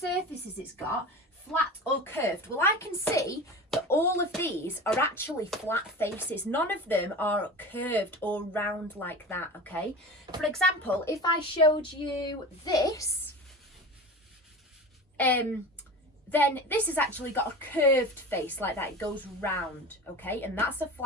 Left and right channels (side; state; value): both; normal; correlation 0.32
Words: it's got, flat or curved, well, I can see that all of these are actually flat faces. None of them are curved or round like that, okay? For example, if I showed you this, then this has actually got a curved face like that. It goes round, okay? And that's a